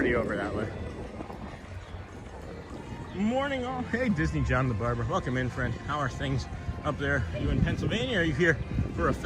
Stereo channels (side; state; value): both; identical; correlation 1.00